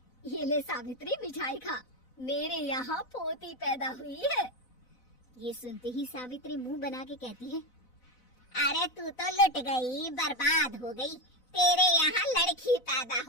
ये ले सावित्री, मिठाई खा, मेरे यहाँ पोती पैदा हुई है। ये सुनते ही सावित्री मुंह बना के कहती है, अरे तू तो लुट गई, बर्बाद हो गई, तेरे यहाँ लड़की पैदा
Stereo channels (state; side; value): late; right; 4.0 ms